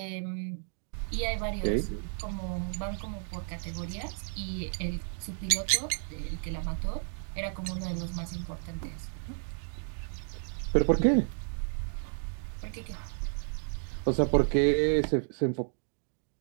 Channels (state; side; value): silent; left; 56 dB below the other